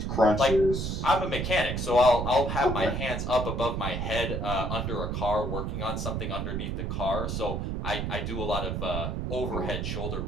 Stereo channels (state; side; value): noise; right; rumble, 2 dB below the sound